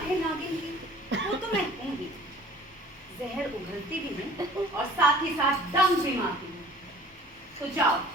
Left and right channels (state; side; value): normal; both; correlation 0.49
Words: है नागिन की, वो तो मैं हूँ ही। जहर उगलती भी हूँ और साथ ही साथ दम भी मारती हूँ। तो जाओ,